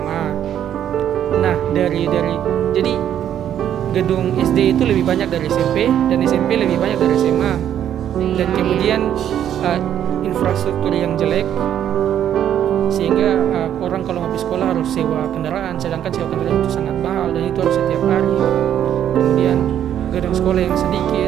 Nah, jadi gedung SD itu lebih banyak dari SMP dan SMP lebih banyak dari SMA. Dan kemudian infrastruktur yang jelek sehingga orang kalau habis sekolah harus sewa kendaraan, sedangkan sewa kendaraan itu sangat mahal dan itu harus setiap hari. Kemudian gedung sekolah yang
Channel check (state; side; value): quieter; left; 10.2 dB